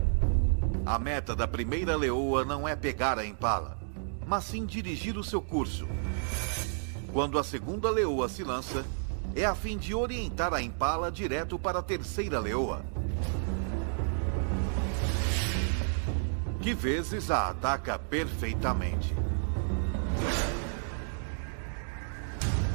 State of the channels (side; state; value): left; silent; digital silence